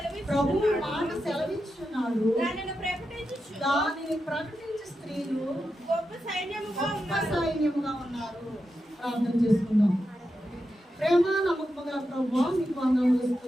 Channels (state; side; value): normal; both; correlation 0.88